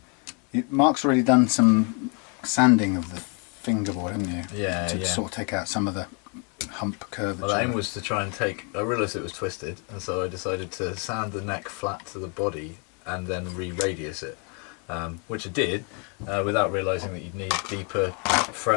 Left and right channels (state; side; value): quieter; right; 35.4 dB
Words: Mark's already done some sanding of the fingerboard, haven't you? Yeah. To sort of take out some of the hump curvature. Well, the aim was to try and I realised it was twisted, and so I decided to sand the neck flat to the body and then re-radius it, which I did without realising that you'd need deeper